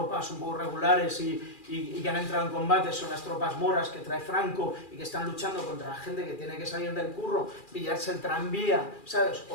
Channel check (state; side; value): late; right; 2.4 ms